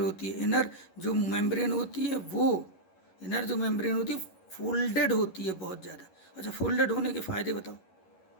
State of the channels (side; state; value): right; late; 11 ms